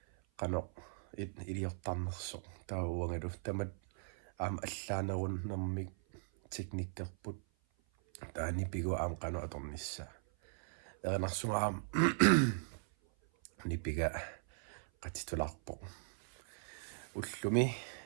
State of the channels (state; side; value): silent; left; 52 dB below the other